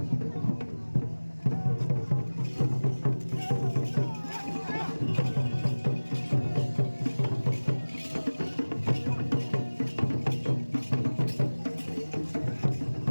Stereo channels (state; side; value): inverted; both; correlation -1.00